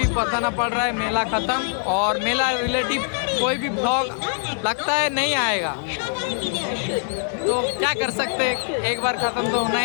बताना पड़ रहा है। मेला ख़त्म और मेला रिलेटिव कोई भी ब्लॉग लगता है नहीं आएगा, तो क्या कर सकते हैं, एक बार ख़त्म तो होना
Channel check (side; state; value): right; silent; digital silence